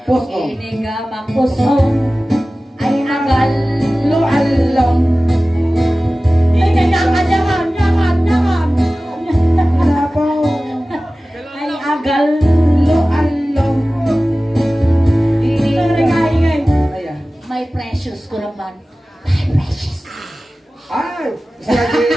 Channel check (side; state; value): both; normal; correlation 0.97